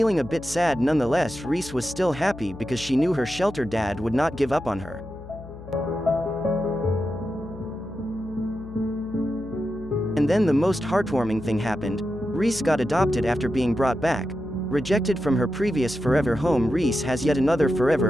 a bit sad nonetheless, Reece was still happy because she knew her shelter dad would not give up on her. And then the most heartwarming thing happened. Reece got adopted after being brought back. Rejected from her previous forever home, Reece has yet another forever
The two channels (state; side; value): noise; left; hum, 15 dB below the sound